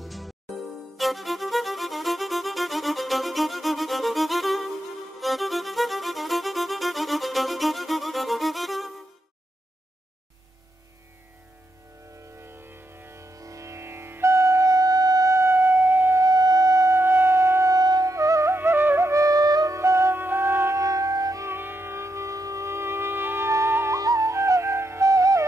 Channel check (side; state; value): both; normal; correlation 0.83